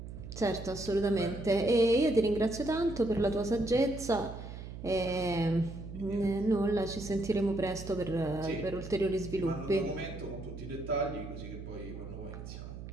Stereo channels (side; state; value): right; noise; hum, 11 dB below the sound